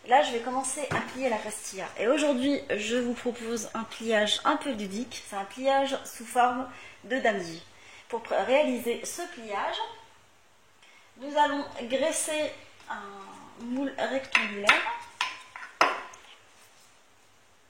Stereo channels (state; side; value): identical; both; correlation 1.00